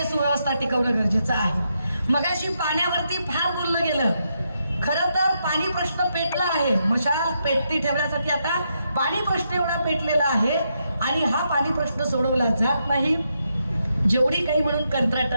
सुव्यवस्था टिकवणं गरजेचं आहे. मगाशी पाण्यावरती फार बोललं गेलं. खरं तर पाणी प्रश्न पेटला आहे. मशाल पेटती ठेवण्यासाठी आता पाणी प्रश्न एवढा पेटलेला आहे आणि हा पाणी प्रश्न सोडवला जात नाही. जेवढी काही म्हणून कंत्राट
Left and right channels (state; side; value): inverted; both; correlation -0.81